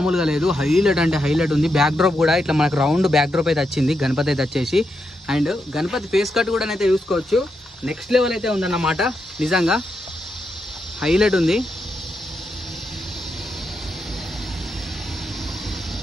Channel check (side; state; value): both; normal; correlation 0.84